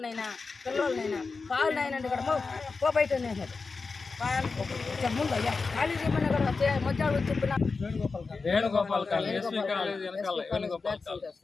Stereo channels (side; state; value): right; quieter; 4.4 dB